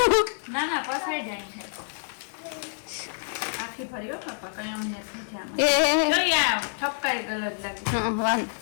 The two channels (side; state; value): right; silent; 58 dB below the other